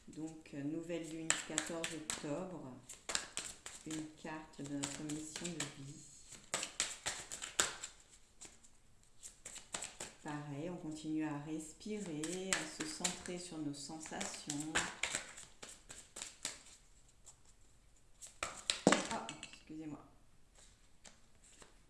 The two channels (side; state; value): both; identical; correlation 1.00